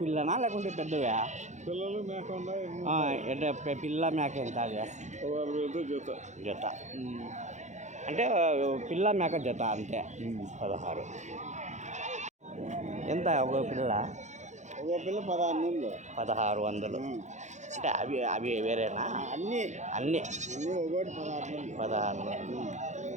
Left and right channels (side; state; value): left; late; 0.34 ms